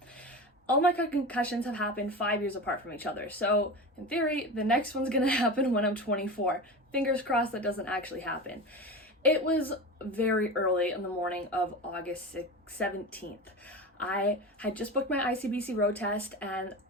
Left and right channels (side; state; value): both; normal; correlation 0.27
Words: All my concussions have happened 5 years apart from each other, so in theory, the next one's gonna happen when I'm 24. Fingers crossed that doesn't actually happen. It was very early in the morning of August 17th. I had just booked my ICBC road test and